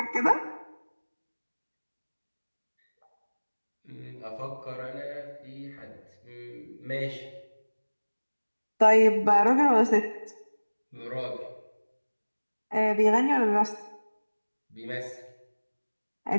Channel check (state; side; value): inverted; both; correlation -1.00